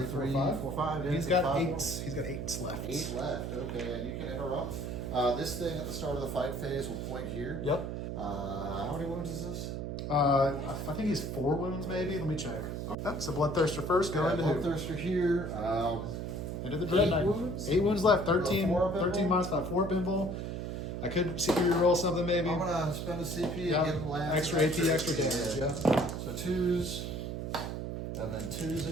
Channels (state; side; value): noise; right; hum, 4 dB below the sound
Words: 5. 4, 5. Yeah, He's got 5 8. more. He's got 8 left. 8 left. Okay, and you can interrupt. This thing at the start of the fight phase will point here. Yep. How many wounds is this? I think he's 4 wounds, maybe. Let me check. Yep. So Bloodthirster first. Go into Bloodthirster here. Into the Dread Knight. 8 wounds left. 13 minus 5. 4 up invul. I could CP roll something maybe. I'm gonna spend a CP and give him lands. Extra AP, extra damage. Yeah. So 2s, and then 2s